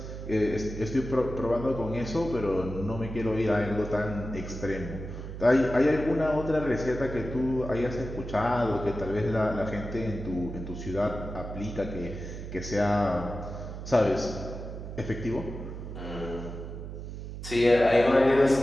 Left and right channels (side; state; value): right; noise; hum, 9 dB below the sound